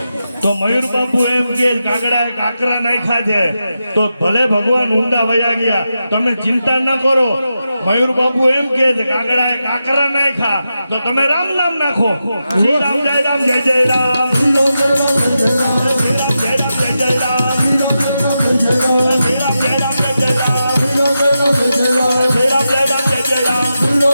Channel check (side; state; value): both; inverted; correlation -0.89